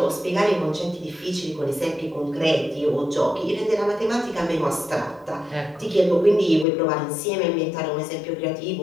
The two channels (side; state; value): right; drops out; at 6.7 s